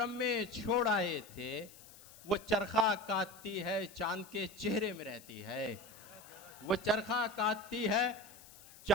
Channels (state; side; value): noise; left; hiss, 20 dB below the sound